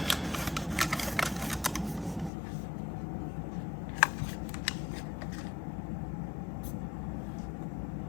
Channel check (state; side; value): drops out; right; at 2.3 s